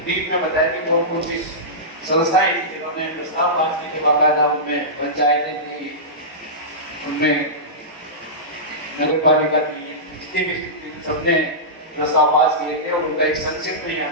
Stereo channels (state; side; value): normal; both; correlation -0.16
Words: डीप में बताया कि कौन कौन सी संस्थाएं थी जिन्होंने प्रस्ताव पास किए थे, बाकायदा उनमें पंचायतें थी, उनमें नगरपालिका थी, जितने भी सबने प्रस्ताव पास किए थे और उनका एक संक्षिप्त में यहाँ